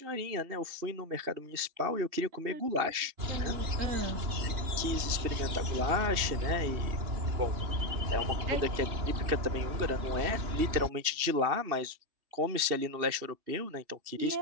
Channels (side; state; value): left; late; 2.7 ms